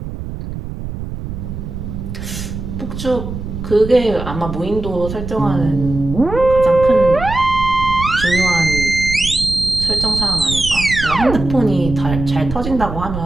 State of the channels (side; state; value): right; noise; rumble, 8 dB below the sound